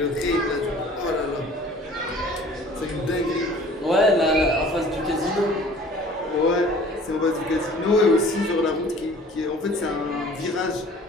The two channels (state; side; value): normal; both; correlation 0.49